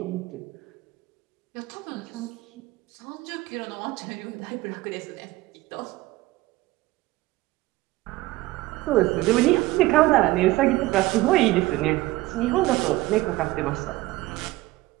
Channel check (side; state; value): left; quieter; 18.5 dB